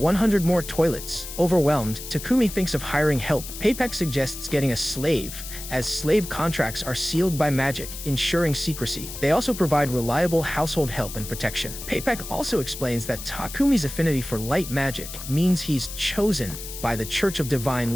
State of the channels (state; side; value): noise; left; hiss, 10 dB below the sound